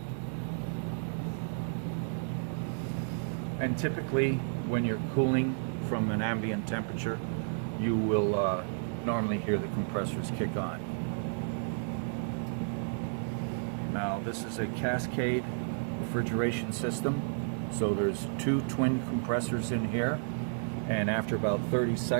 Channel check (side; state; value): left; silent; digital silence